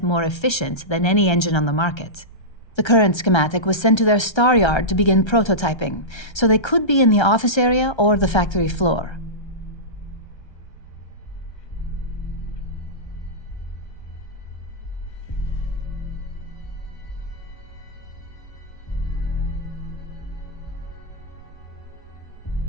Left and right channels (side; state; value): right; late; 1.3 ms